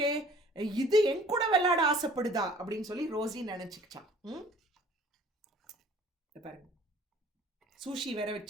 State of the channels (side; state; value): both; normal; correlation 0.52